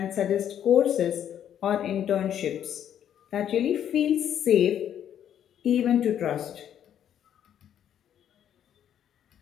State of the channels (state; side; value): quieter; right; 9.9 dB